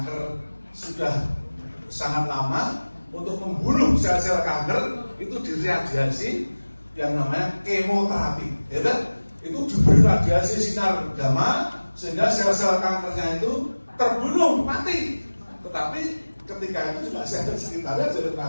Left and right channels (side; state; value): both; inverted; correlation -1.00